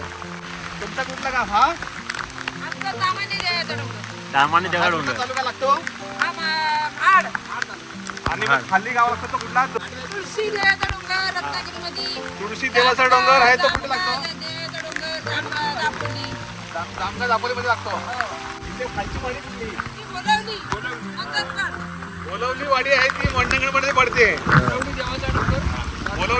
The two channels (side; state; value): both; identical; correlation 1.00